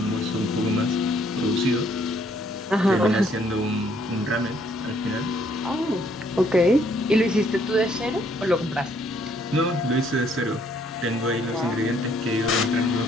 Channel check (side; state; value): both; normal; correlation 0.67